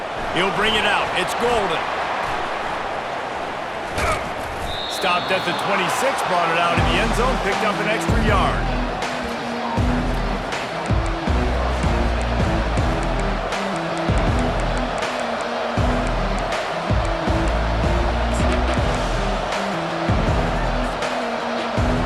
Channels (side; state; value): both; identical; correlation 1.00